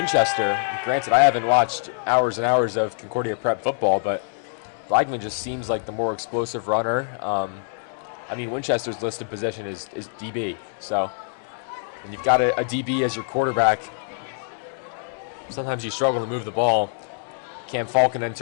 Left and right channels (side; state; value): right; silent; digital silence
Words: Granted, I haven't watched hours and hours of Concordia prep football, but Blagman just seems like the more explosive runner. I mean, Winchester's listed position is DB, so when you've got a DB as your quarterback, sometimes you struggle to move the ball. Cam Falcon